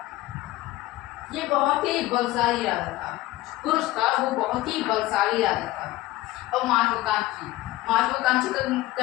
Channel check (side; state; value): right; quieter; 17.6 dB